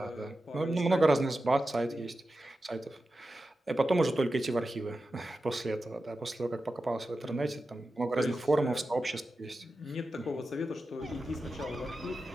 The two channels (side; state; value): both; normal; correlation 0.92